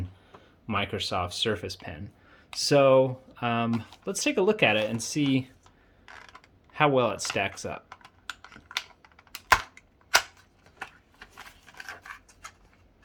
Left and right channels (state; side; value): identical; both; correlation 1.00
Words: Microsoft Surface pen. So let's take a look at it and see how well it stacks up.